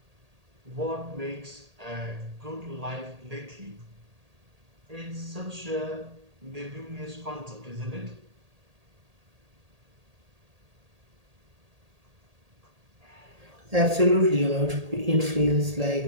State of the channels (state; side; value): late; left; 1.8 ms